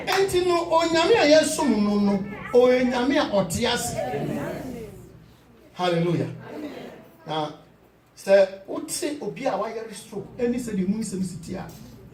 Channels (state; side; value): identical; both; correlation 1.00